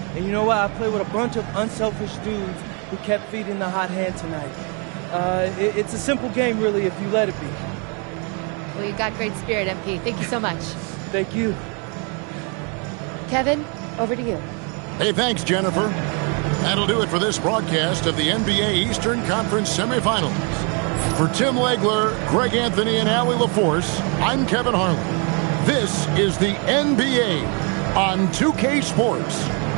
And you know what? I played with a bunch of unselfish dudes who kept feeding the hot hand tonight. It's a simple game, really, if you let it be. Well, you got great spirit, MP. Thank you so much. Thank you. Kevin, over to you. Hey, thanks, Jennifer. That'll do it for this broadcast of the NBA Eastern Conference semifinals. For Tim Legler, Greg Anthony, and Allie LaForce, I'm Kevin Harlan. This is the NBA on 2K Sports.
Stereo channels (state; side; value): quieter; left; 35.6 dB